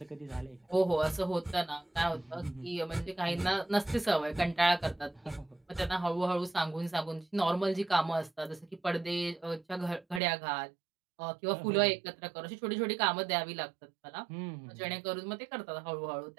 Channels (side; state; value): left; drops out; at 10.2 s